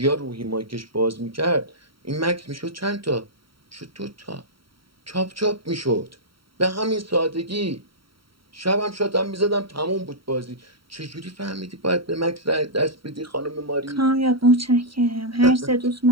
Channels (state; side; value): late; left; 0.74 ms